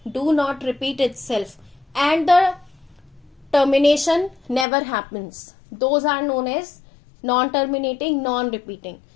do not repeat itself and the termination never happens, those are known as non-terminating, non-repeating.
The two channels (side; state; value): right; drops out; at 4.7 s